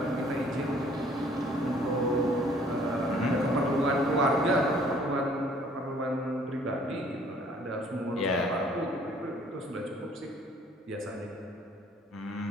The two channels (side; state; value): both; normal; correlation 0.58